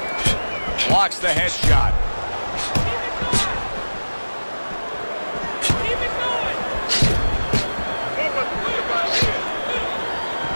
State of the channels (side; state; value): both; inverted; correlation -1.00